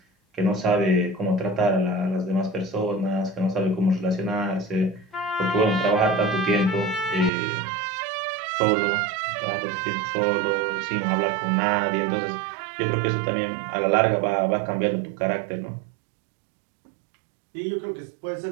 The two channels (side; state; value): left; drops out; at 7.3 s